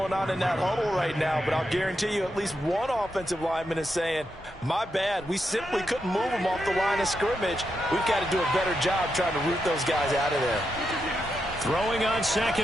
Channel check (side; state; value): both; normal; correlation 0.84